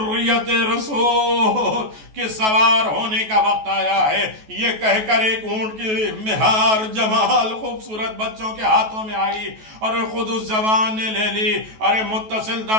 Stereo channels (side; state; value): left; late; 14 ms